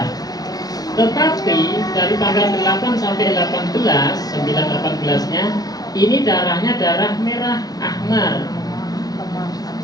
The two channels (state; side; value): late; right; 0.18 ms